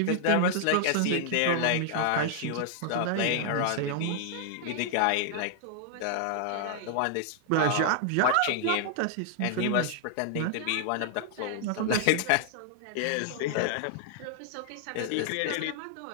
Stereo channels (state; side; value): different; both; correlation 0.00